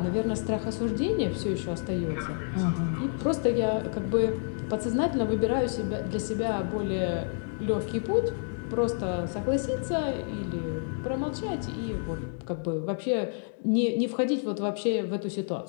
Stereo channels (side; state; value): right; silent; 59 dB below the other